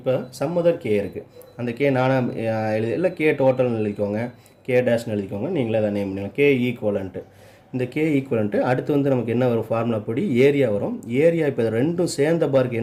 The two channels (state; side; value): identical; both; correlation 1.00